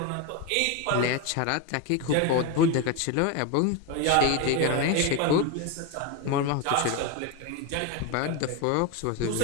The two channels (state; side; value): different; both; correlation 0.03